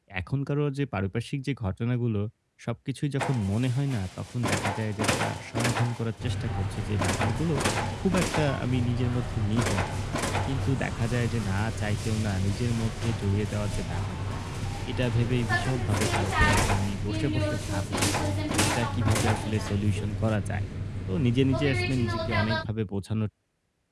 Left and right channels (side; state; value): both; identical; correlation 1.00